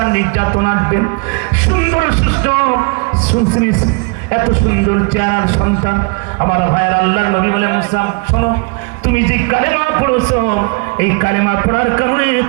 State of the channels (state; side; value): quieter; left; 31.3 dB